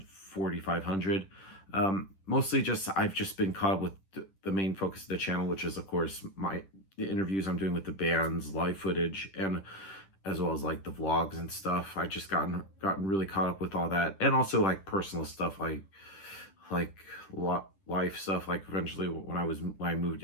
4,500. Mostly just I've just been caught up with the main focus of the channel, which is of course the interviews I'm doing with the bands, live footage, and as well as like the vlogs and stuff. I just gotten really caught up with all that, and also like personal stuff, like life stuff. Like eventually when I moved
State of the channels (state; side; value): late; right; 10 ms